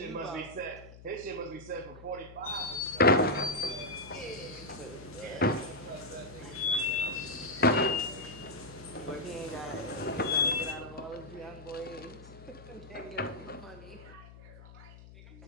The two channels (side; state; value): left; noise; hum, 18 dB below the sound